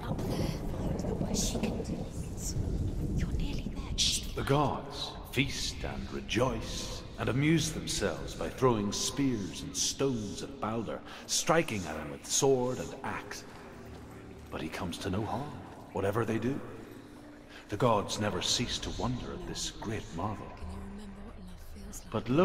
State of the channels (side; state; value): both; identical; correlation 1.00